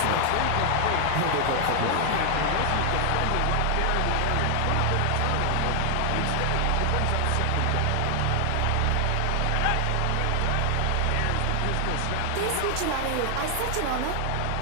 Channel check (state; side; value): different; both; correlation 0.00